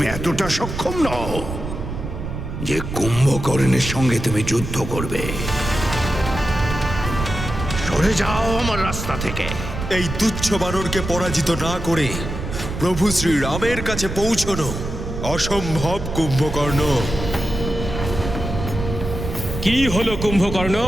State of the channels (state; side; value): noise; right; rumble, 6 dB below the sound